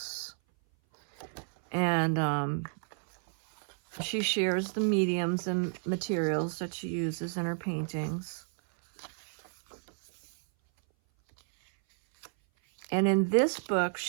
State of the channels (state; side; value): silent; left; 57 dB below the other